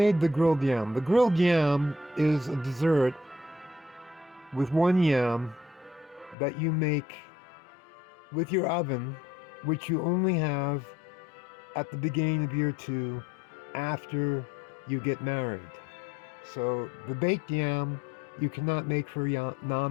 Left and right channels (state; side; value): drops out; right; at 6.4 s